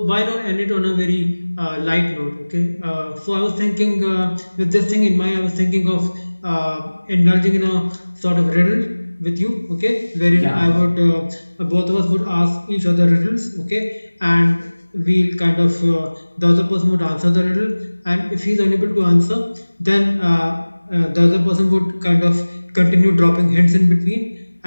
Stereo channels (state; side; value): inverted; both; correlation -1.00